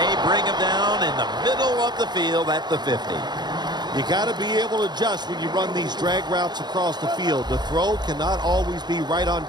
bring him down in the middle of the field at the 50. You got to be able to adjust when you run these drag routes across the field. The throw cannot always be right on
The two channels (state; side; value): late; left; 0.21 ms